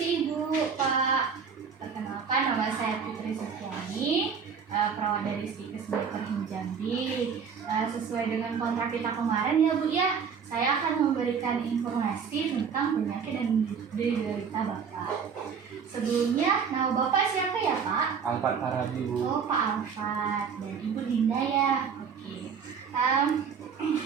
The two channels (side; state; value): left; quieter; 6.5 dB